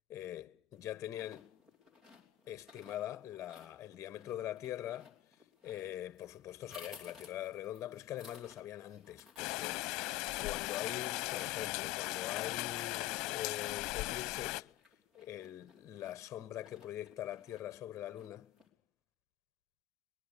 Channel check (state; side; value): quieter; right; 14.8 dB